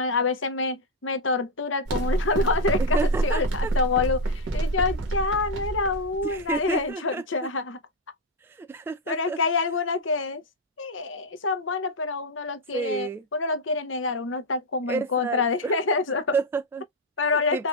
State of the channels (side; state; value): both; normal; correlation 0.02